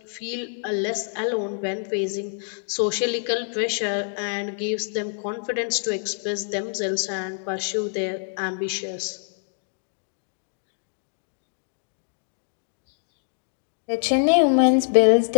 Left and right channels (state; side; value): silent; right; 61 dB below the other